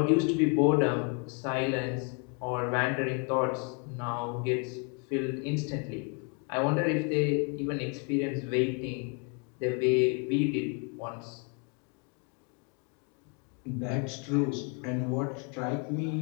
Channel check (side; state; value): right; quieter; 35.1 dB